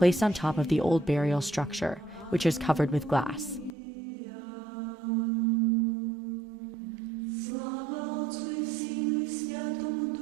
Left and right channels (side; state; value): left; drops out; at 3.8 s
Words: on top of the old burial structure, which is covered with glass.